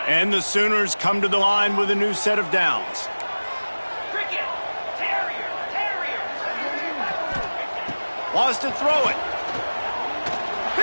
And the Sooners come to the line with a new set of downs. Wants to throw it.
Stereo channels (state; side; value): inverted; both; correlation -1.00